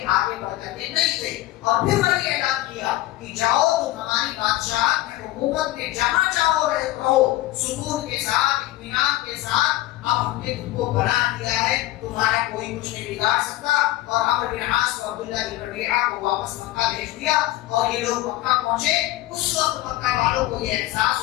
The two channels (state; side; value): quieter; right; 16.5 dB